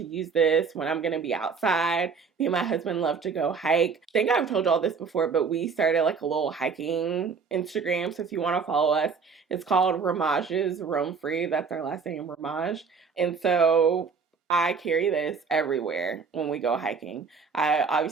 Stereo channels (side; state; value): left; quieter; 5.4 dB